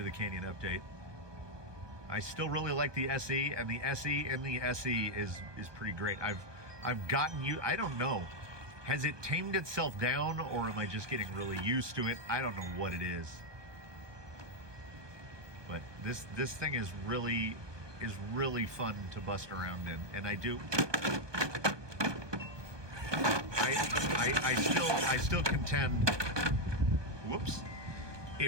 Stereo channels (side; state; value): left; late; 1.2 ms